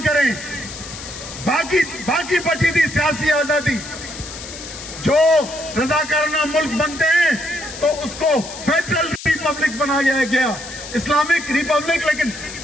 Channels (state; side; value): noise; left; hiss, 12 dB below the sound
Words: کریں. باقی بچی تھی سیاسی آزادی. جو رضاکارانہ ملک بنتے ہیں تو اس کو فیڈرل ریپبلک بنایا گیا، اسلامک ریپبلک، لیکن